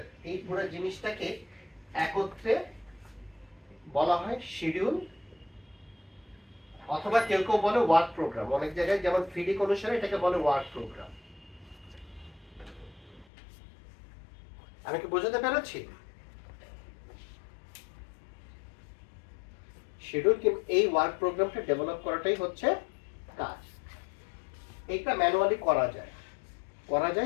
এই পুরো জিনিসটাকে একত্রে বলা হয় শিডিউল, অথবা কেউ কেউ বলে ওয়ার্ক প্রোগ্রাম। অনেক জায়গায় যেমন ফিডিক অনুসারে এটাকে বলে ওয়ার্ক প্রোগ্রাম। আমি কি বোঝাতে পেরেছি? শিডিউল কি এই ওয়ার্ক প্রোগ্রামটা ডেভেলপ করাটাই হচ্ছে কাজ। এইটা ম্যানুয়ালি করা যায়,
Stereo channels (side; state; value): right; drops out; at 13.2 s